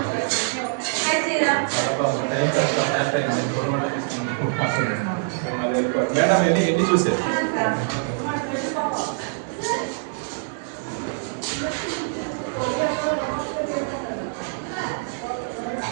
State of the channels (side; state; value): left; silent; digital silence